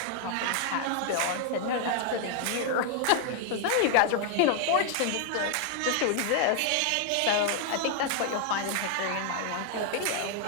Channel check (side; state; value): both; different; correlation 0.00